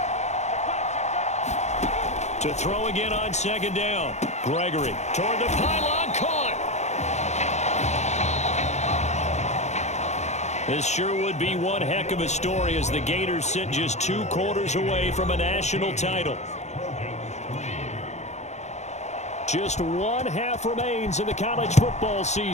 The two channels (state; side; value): late; right; 0.33 ms